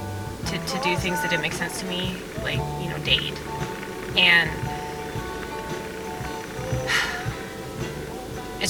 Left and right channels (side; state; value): both; identical; correlation 1.00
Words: to do things that didn't make sense to me, like, date. And